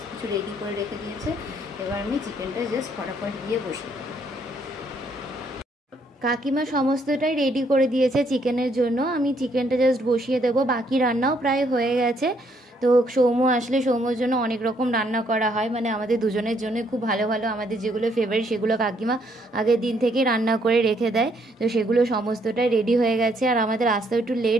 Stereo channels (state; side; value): normal; both; correlation 0.70